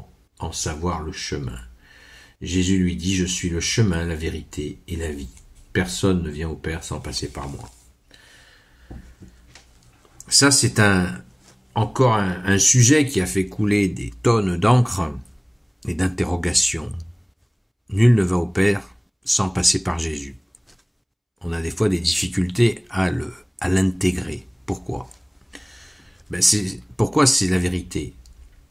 en savoir le chemin ?» Jésus lui dit « Je suis le chemin, la vérité et la vie. Personne ne vient au Père sans passer par moi. » Ça, c'est encore un sujet qui a fait couler des tonnes d'encre et d'interrogations. Nul ne va au Père sans passer par Jésus. On a des fois des difficultés à l'intégrer. Pourquoi ? Pourquoi c'est la vérité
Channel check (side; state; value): both; identical; correlation 1.00